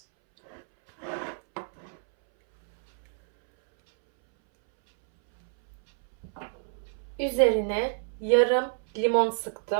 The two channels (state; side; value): silent; left; 60 dB below the other